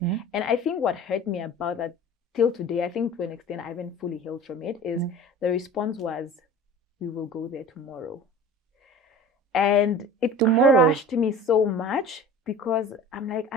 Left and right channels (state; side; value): normal; both; correlation 0.41